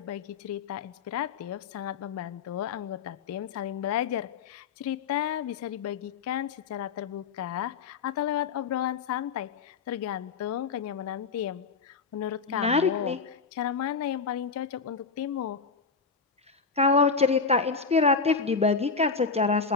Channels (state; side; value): quieter; right; 5.0 dB